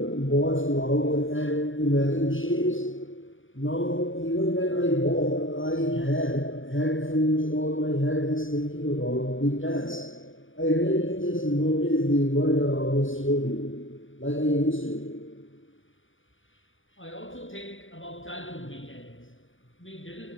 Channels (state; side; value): late; right; 0.57 ms